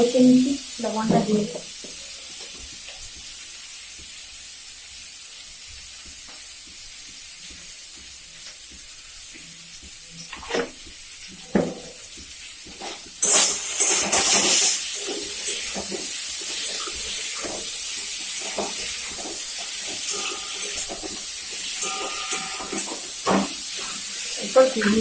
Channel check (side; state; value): both; identical; correlation 1.00